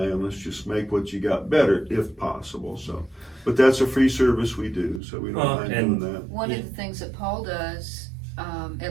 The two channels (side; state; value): left; drops out; at 5.0 s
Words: and let's just make what you got better if possible. So, but that's a free service we do, so we don't mind doing that. One of the things that Paul does,